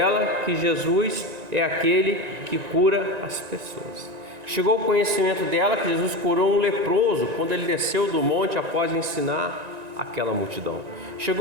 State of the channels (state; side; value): late; left; 1.9 ms